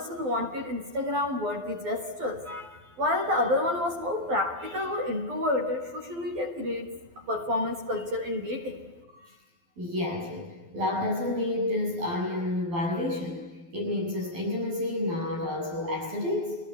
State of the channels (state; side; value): late; left; 12 ms